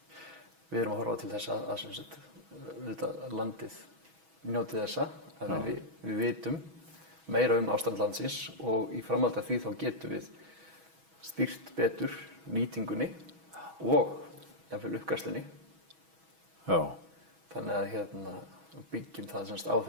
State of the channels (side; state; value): left; late; 6.2 ms